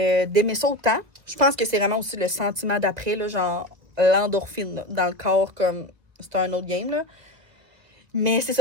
ça autant. Je pense que c'est vraiment aussi le sentiment d'après, là, genre l'endorphine là, dans le corps, comme c'est un autre game, là. Mais c'est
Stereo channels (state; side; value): late; left; 1.7 ms